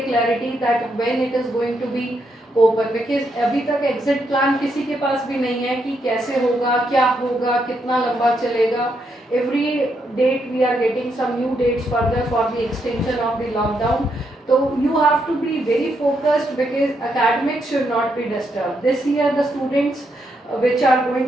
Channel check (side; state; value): both; normal; correlation 0.79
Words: clarity that when it is going to be open, because अभी तक exit plan किसी के पास भी नहीं है कि कैसे होगा, क्या होगा, कितना लंबा चलेगा. Every date we are getting some new dates further for the extension of the lockdown. तो you have to be very focused because academics should not be disturbed. This year the students which are